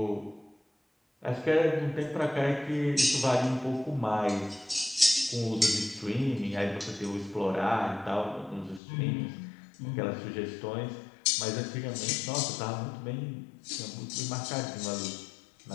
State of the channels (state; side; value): drops out; right; at 8.8 s